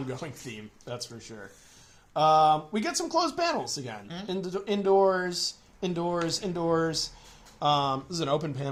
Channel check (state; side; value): identical; both; correlation 1.00